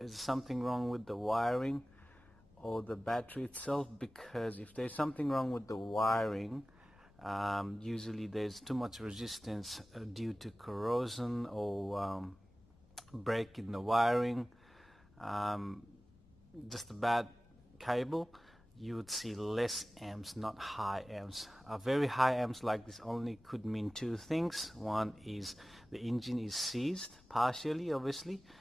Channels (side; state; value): left; noise; rumble, 27 dB below the sound